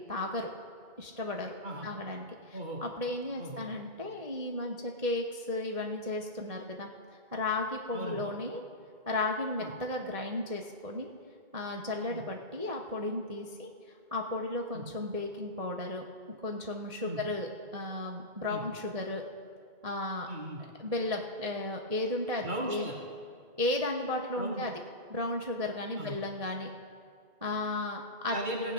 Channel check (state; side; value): late; left; 1.8 ms